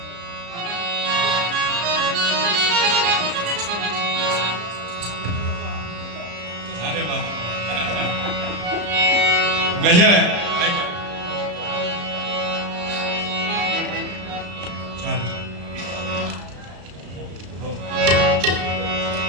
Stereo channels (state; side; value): late; left; 34 ms